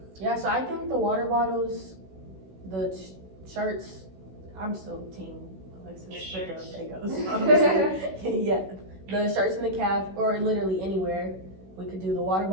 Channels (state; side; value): late; left; 16 ms